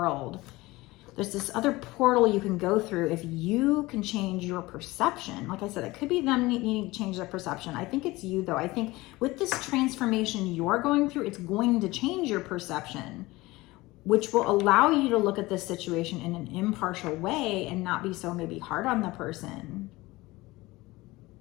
There's this other portal you can go through if you can change your perception. Like I said, it could be them needing to change their perception. I think it's you, though. I think with this transformation you're going through, it's going to change your perception, which will allow you to look at this situation in an impartial way and not be so maybe hard on the person.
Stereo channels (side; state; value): right; quieter; 20.4 dB